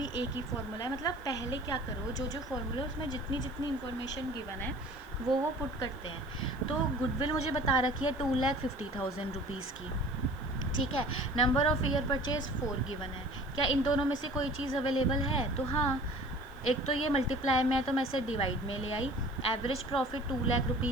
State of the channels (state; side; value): noise; right; hiss, 29 dB below the sound